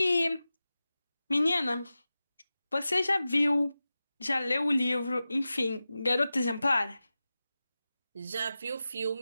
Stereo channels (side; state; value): both; inverted; correlation -0.94